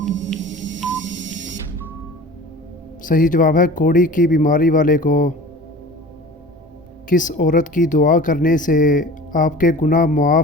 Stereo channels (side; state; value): both; normal; correlation 0.40